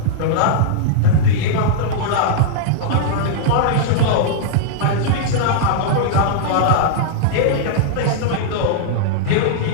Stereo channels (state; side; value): different; both; correlation -0.01